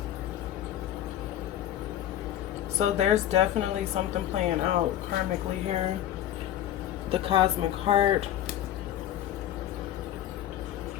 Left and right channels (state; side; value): quieter; right; 11.7 dB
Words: So there's definitely something playing out karmically here. The cosmic heart.